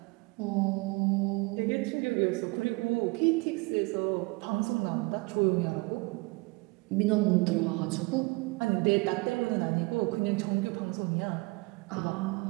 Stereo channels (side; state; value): left; quieter; 26.4 dB